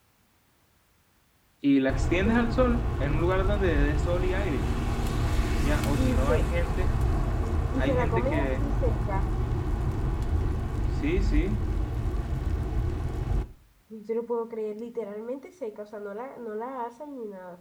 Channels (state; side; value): identical; both; correlation 1.00